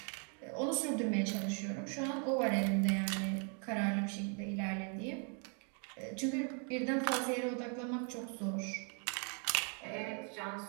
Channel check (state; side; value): quieter; left; 39.6 dB